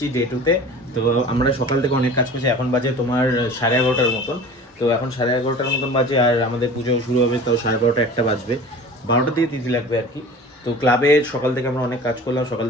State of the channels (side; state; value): both; normal; correlation 0.40